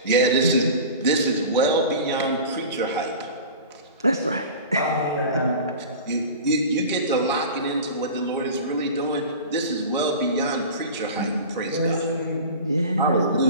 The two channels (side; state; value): both; inverted; correlation -0.35